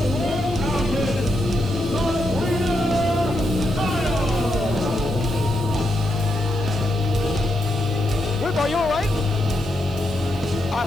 Are you all right? I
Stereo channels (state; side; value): noise; right; hiss, 22 dB below the sound